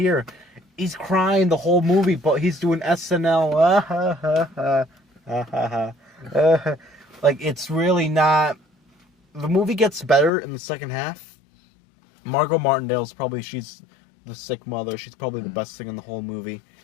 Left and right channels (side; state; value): right; drops out; at 10.3 s